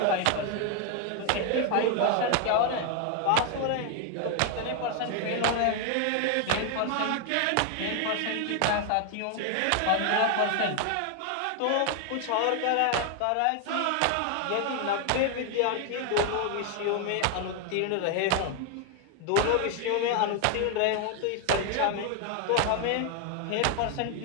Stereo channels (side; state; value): both; different; correlation 0.00